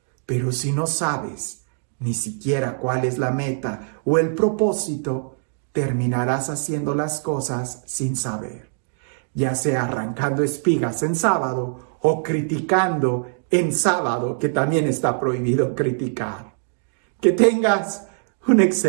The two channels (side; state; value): left; silent; digital silence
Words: Pero si no sabes ni siquiera cuál es la meta o el propósito, terminarás haciendo las cosas sin saber. Ya sea arrancando espigas en sábado o criticando en sábado, que también está prohibido criticar. Que tengas un